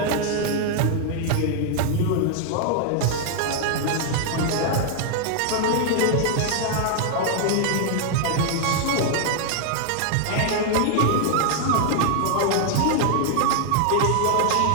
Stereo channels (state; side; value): different; both; correlation 0.00